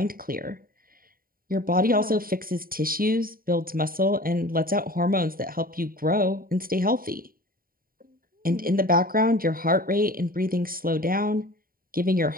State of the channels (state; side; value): late; left; 0.42 ms